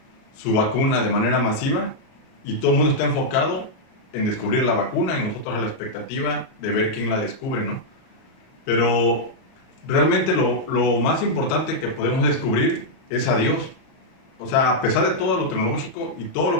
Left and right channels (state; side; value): late; right; 37 ms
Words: vacuna de manera masiva, y todo el mundo está enfocado en descubrir la vacuna y nosotros a la expectativa de ver quién la descubre, ¿no? Pero realmente lo más importante que podemos descubrir es a Dios. O sea, a pesar de todo lo tecnológico y todo